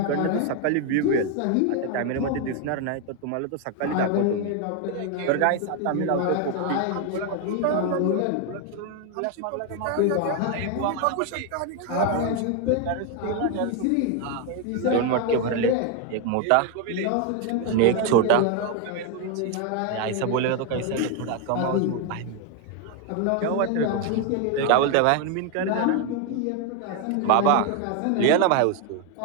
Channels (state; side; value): different; both; correlation 0.01